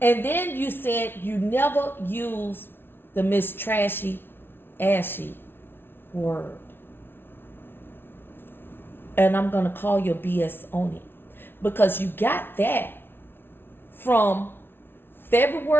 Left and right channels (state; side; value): late; right; 0.11 ms